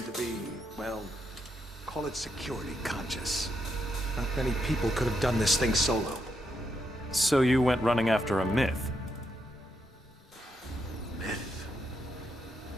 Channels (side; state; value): both; normal; correlation 0.80